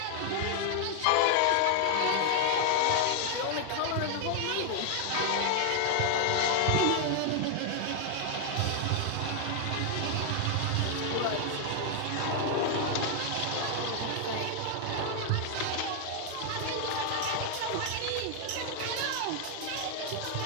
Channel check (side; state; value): both; different; correlation 0.00